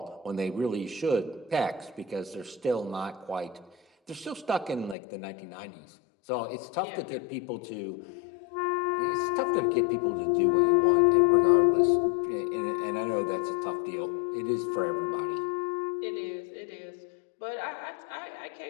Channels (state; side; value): drops out; right; at 5.0 s